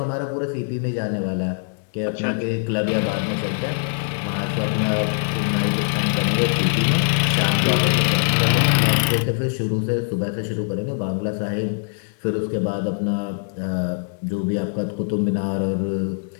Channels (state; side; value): silent; right; digital silence